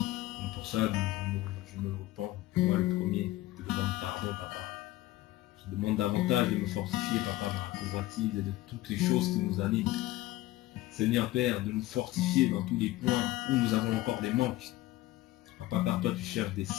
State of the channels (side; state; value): right; quieter; 16.7 dB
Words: pour ça, je me repens, moi le premier, je te demande pardon, Papa. Je demande davantage de me fortifier, Papa, dans la convoitise et de toutes les choses qui nous animent. Seigneur Père, de nous fortifier dans tous les points où nous avons encore des manques. Papa, car toi tu cherches des